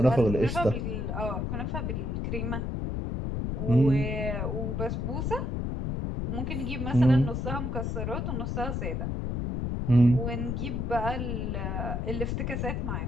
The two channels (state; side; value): noise; left; rumble, 1 dB below the sound